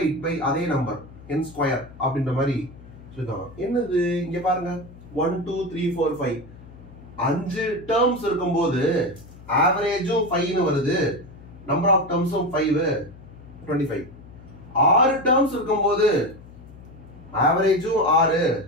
பை அதே நம்பர் n ஸ்கொயர் அப்படின்ற மாதிரி சொல்லுவாங்க என்னது இங்க பாருங்க 1 2 3 4 5 5 டேர்ம்ஸ் இருக்கும்போது ஆவரேஜும் 5 னு வருது நம்பர் ஆஃப் டேர்ம்ஸும் 5 25 6 டேர்ம்ஸ் இருக்கும்போது ஆவரேஜும் 6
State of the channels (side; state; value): left; noise; hum, 19 dB below the sound